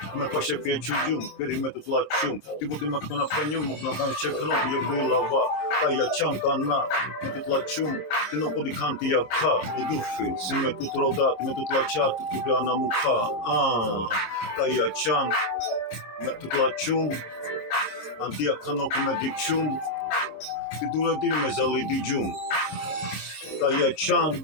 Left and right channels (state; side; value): late; right; 26 ms